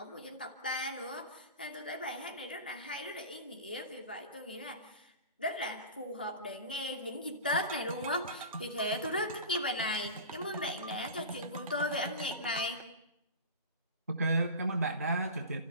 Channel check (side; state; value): both; inverted; correlation -0.32